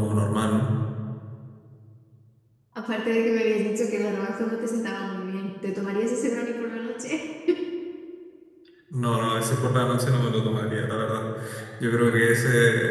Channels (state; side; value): identical; both; correlation 1.00